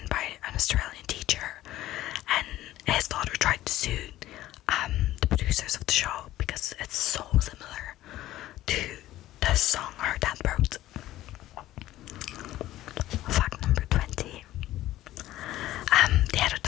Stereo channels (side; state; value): right; quieter; 14.8 dB